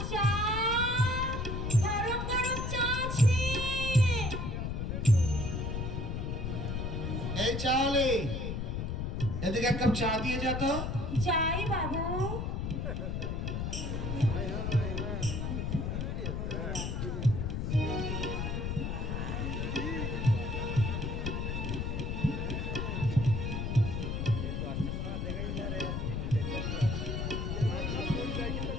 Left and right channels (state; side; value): noise; left; rumble, 2 dB below the sound